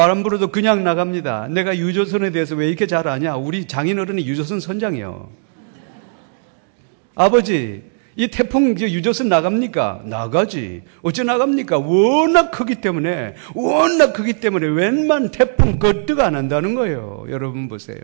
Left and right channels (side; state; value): left; silent; digital silence